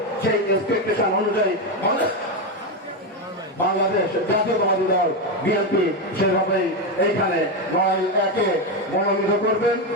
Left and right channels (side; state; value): both; normal; correlation 0.10